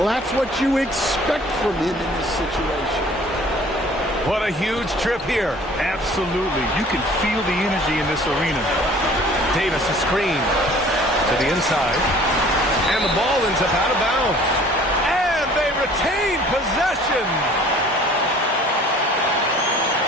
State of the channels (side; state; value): both; normal; correlation 0.51